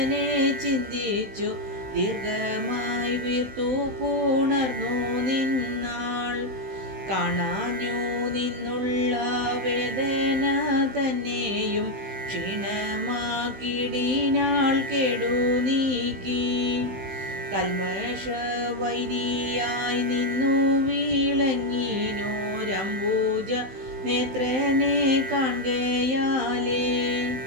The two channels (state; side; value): late; left; 16 ms